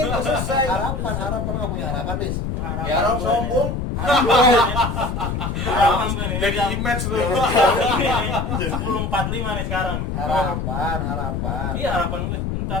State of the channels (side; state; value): left; noise; rumble, 2 dB below the sound